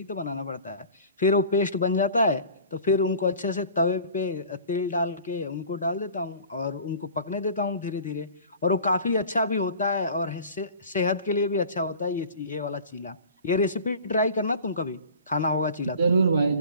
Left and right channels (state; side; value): inverted; both; correlation -0.42